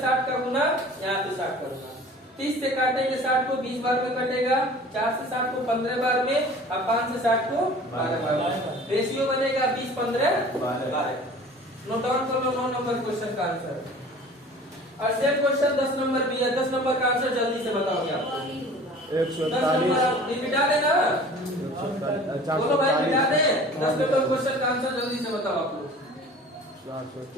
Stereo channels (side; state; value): both; normal; correlation 0.45